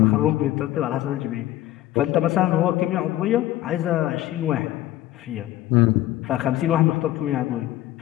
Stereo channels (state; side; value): quieter; right; 14.6 dB